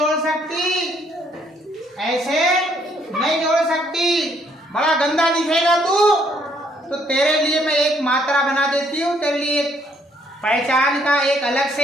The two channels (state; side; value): normal; both; correlation 0.68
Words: सकती, ऐसे नहीं जोड़ सकती, बड़ा गंदा दिखेगा तू। तो तेरे लिए मैं एक मात्रा बना देती हूँ, तेरे लिए पहचान का एक अलग